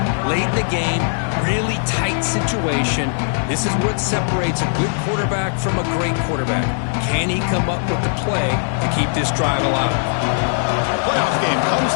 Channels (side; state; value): right; silent; digital silence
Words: Late in the game, really tight situation. This is what separates a good quarterback from a great quarterback. Can he come up with the play to keep this drive alive? Playoff game